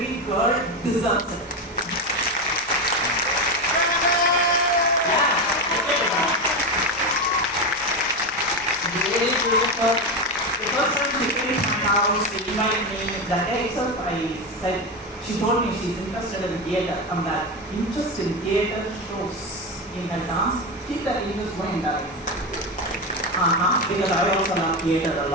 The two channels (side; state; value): both; normal; correlation 0.16